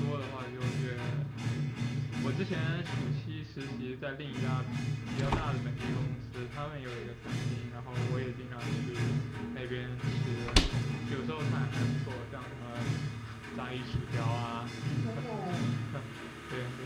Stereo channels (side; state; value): both; identical; correlation 1.00